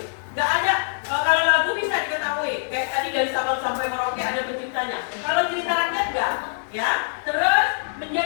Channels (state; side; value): silent; right; digital silence